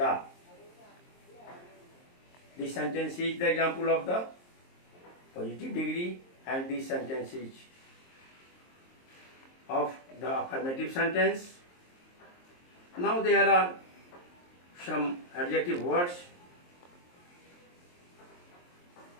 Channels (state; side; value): late; right; 23 ms